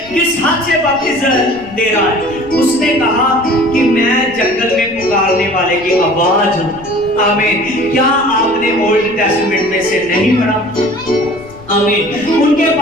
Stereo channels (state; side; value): noise; left; rumble, 22 dB below the sound